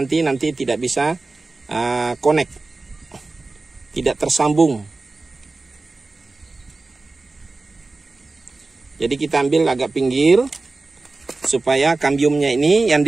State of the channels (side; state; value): left; quieter; 3.5 dB